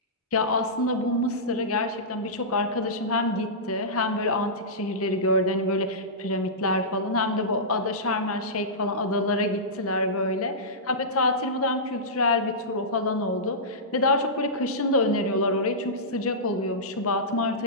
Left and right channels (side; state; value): both; normal; correlation -0.17